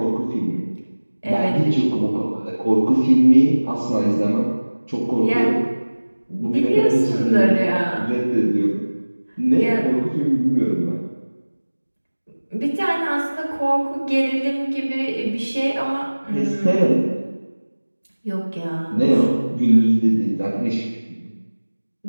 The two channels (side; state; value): both; inverted; correlation -1.00